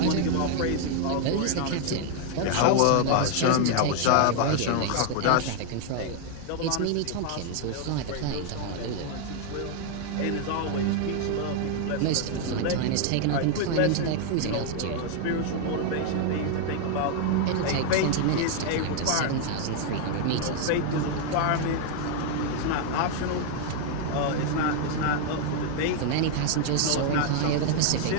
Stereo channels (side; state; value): both; different; correlation 0.00